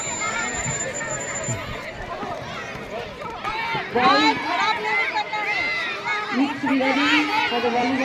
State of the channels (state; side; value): identical; both; correlation 1.00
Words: Needs to be ready for the